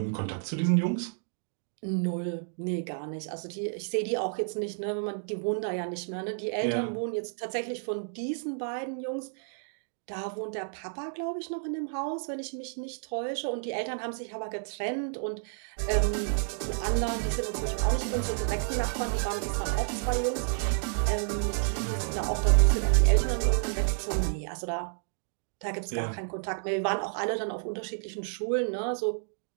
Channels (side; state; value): left; silent; digital silence